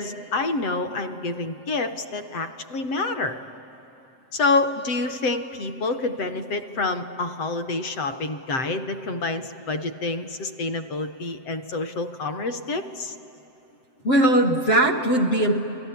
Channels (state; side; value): late; right; 7.7 ms